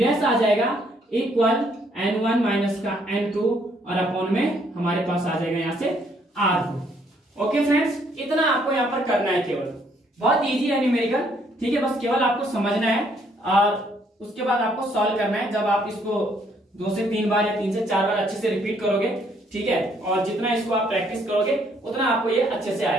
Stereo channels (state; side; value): normal; both; correlation 0.68